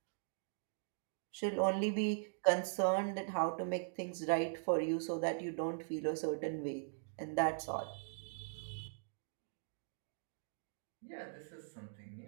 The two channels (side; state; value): left; silent; digital silence